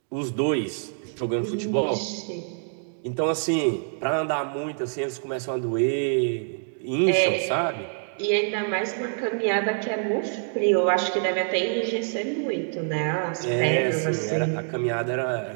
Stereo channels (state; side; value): silent; left; 61 dB below the other